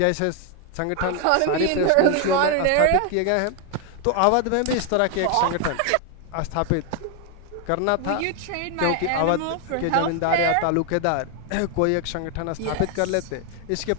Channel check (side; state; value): both; different; correlation 0.01